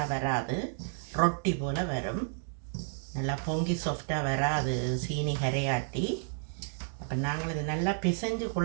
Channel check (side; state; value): left; silent; 57 dB below the other